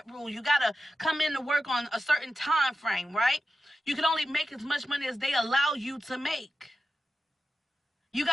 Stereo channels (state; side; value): normal; both; correlation 0.92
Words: rule, you got to come in to work on a certain time frame, right? You can only make as much money as they allow you to make. You